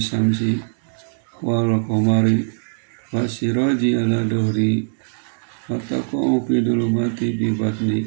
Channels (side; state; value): left; silent; digital silence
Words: samsi wal qamari wasiraji ala dohri wataqa'u fi dulumati bi batni.